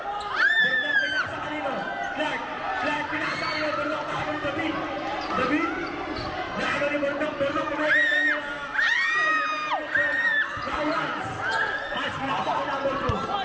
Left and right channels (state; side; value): identical; both; correlation 1.00